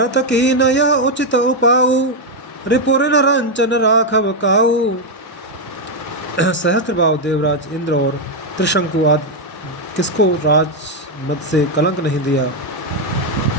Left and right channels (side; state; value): both; normal; correlation 0.02